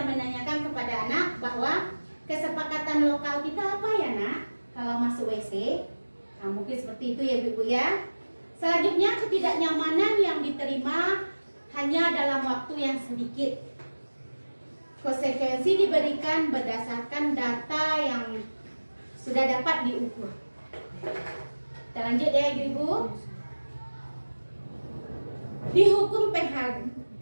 menanyakan kepada anak bahwa kesepakatan lokal kita apa ya nak kalau masuk WC. Nah, mungkin seperti itu ya ibu ya. Selanjutnya, ketidaknyamanan yang diterima hanya dalam waktu yang sedikit. Konsekuensi diberikan berdasarkan data yang sudah dapat diukur. Kita lanjut ya ibu. Dihukum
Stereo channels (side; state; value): both; inverted; correlation -1.00